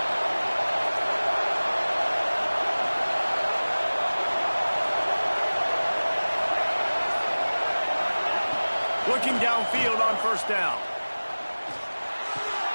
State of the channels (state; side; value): inverted; both; correlation -1.00